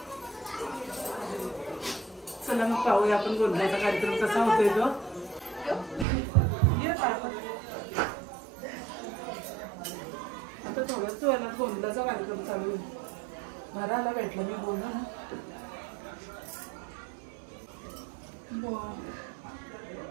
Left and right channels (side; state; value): left; drops out; at 6.1 s